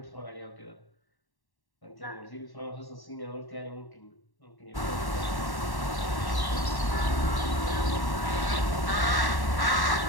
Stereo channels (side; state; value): right; late; 1.1 ms